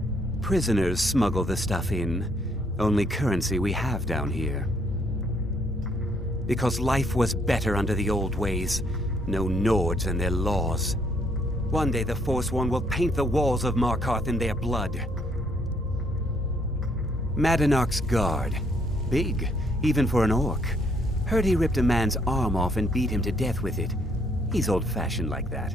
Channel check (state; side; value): normal; both; correlation 0.69